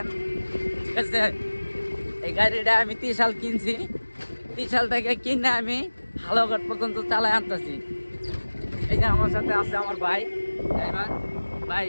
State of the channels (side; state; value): both; inverted; correlation -1.00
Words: ঠিক আছে? এই গাড়িটা আমি 30 সাল কিনছি। 30 সাল থেকে কিনে আমি হালঘাট পর্যন্ত চালায় আনতেছি। এই যে আমার সাথে আছে আমার ভাই ড্রাইভার। ভাই,